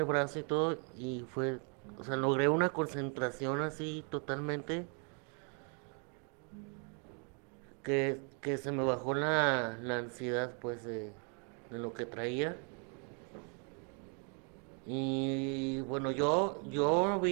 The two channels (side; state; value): left; quieter; 39.2 dB